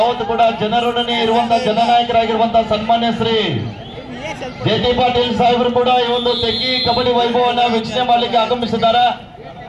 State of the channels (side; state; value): both; identical; correlation 1.00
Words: ಕೂಡ ಜನರೊಡನೆ ಇರುವಂತಹ ಜನನಾಯಕರಾಗಿರುವಂತಹ ಸನ್ಮಾನ್ಯ ಶ್ರೀ ಜೆ.ಟಿ. ಪಾಟೀಲ್ ಸಾಹೇಬರು ಕೂಡ ಈ ಒಂದು ತೆಗ್ಗಿ ಕಬಡ್ಡಿ ವೈಭವವನ್ನು ವೀಕ್ಷಣೆ ಮಾಡಲಿಕ್ಕೆ ಆಗಮಿಸಿದ್ದಾರೆ.